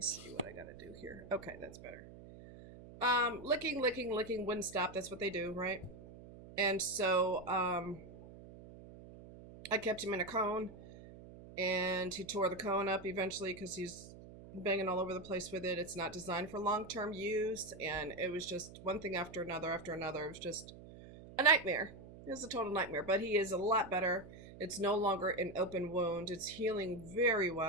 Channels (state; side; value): noise; right; hum, 17 dB below the sound